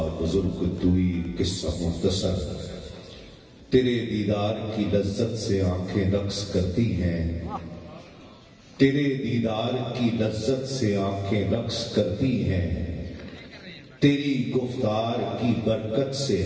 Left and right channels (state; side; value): identical; both; correlation 1.00